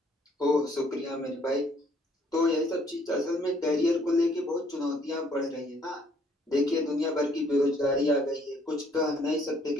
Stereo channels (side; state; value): both; normal; correlation 0.64